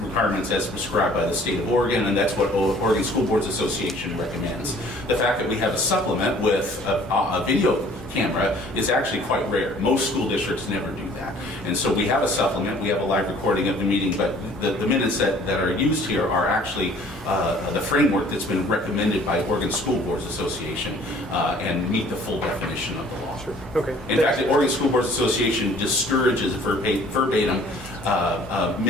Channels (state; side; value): normal; both; correlation 0.54